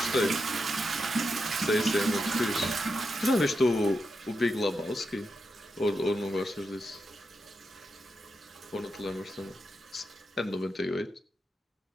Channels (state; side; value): normal; both; correlation 0.86